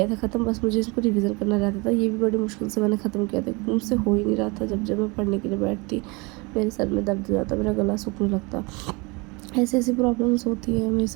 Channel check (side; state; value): left; quieter; 27.3 dB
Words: था ख़त्म, बस मुझे इसको रिवीजन करना रहता था। ये भी बड़ी मुश्किल से मैंने ख़त्म किया था, क्योंकि मुझसे हो ही नहीं रहा था। जब मैं पढ़ने के लिए बैठती, मेरे सर में दर्द हो जाता, मेरा गला सूखने लगता। ऐसी प्रॉब्लम्स होती हैं मेरे